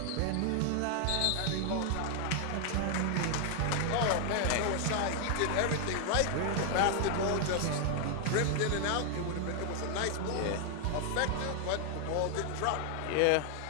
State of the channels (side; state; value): both; different; correlation 0.00